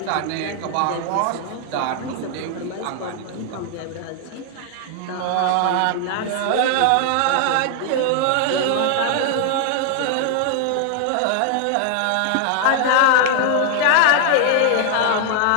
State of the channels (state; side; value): different; both; correlation 0.00